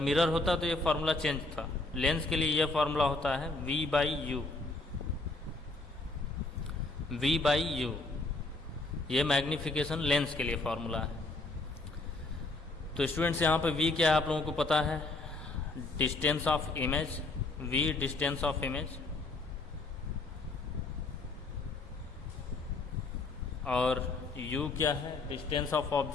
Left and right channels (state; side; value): quieter; right; 3.3 dB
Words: होता तो ये फार्मूला चेंज था, लेंस के लिए ये फार्मूला होता है V/U। V/U ये मैग्नीफिकेशन लेंस के लिए फार्मूला है। तो स्टूडेंट्स यहाँ पे V क्या है आप लोगों को पता है, distance of image, V distance of image, और U क्या है, डिस्टेंस ऑफ